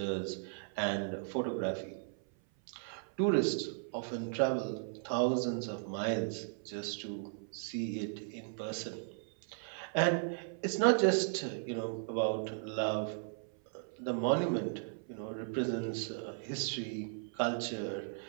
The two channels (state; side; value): silent; left; 54 dB below the other